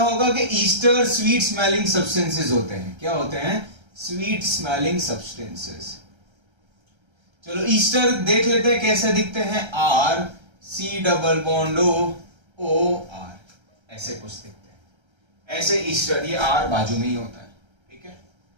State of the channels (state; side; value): late; left; 1.3 ms